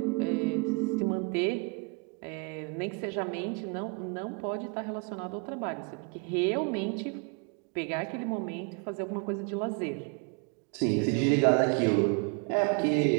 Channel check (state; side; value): quieter; left; 31.3 dB